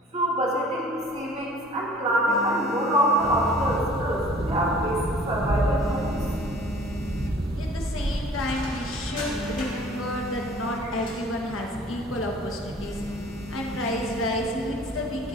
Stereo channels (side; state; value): both; normal; correlation 0.50